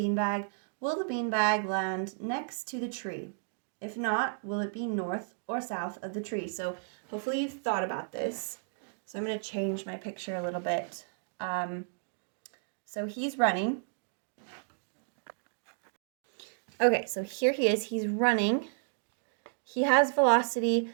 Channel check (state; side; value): silent; left; digital silence